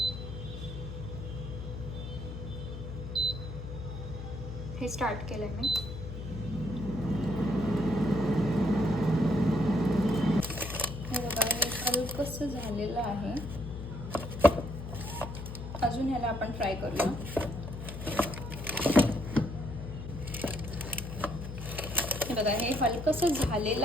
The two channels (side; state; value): left; noise; hum, 8 dB below the sound